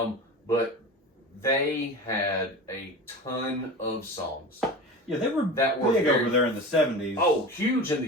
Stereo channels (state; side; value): normal; both; correlation 0.31